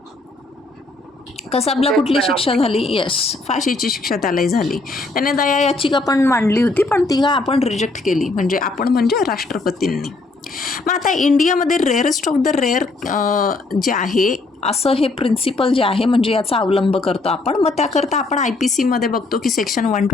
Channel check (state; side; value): quieter; right; 3.3 dB